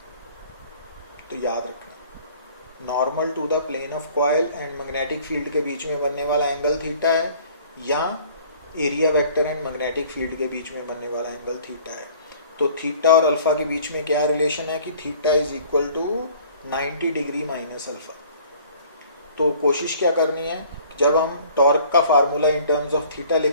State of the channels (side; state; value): both; inverted; correlation -0.52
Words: तो याद रखना, normal to the plane of coil and magnetic field के बीच में बनने वाला एंगल थीटा है, या area vector and magnetic field के बीच में बनने वाला एंगल थीटा है। तो थीटा और अल्फा के बीच में क्या रिलेशन है कि theta is equal to 90 degree minus alpha. तो कोशिश क्या करनी है, जब हम टॉर्क का formula in terms of theta